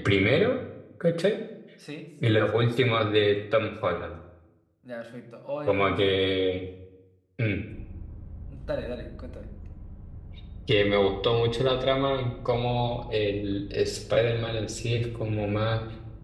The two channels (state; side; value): identical; both; correlation 1.00